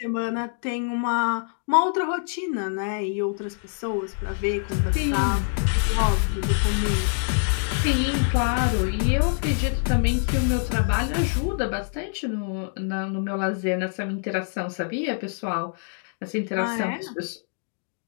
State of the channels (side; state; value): right; silent; digital silence